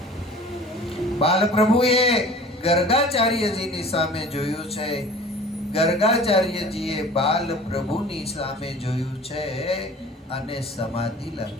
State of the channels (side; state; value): both; normal; correlation 0.44